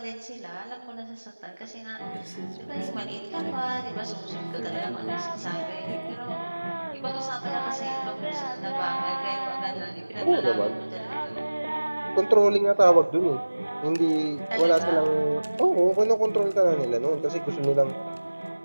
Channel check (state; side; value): inverted; both; correlation -1.00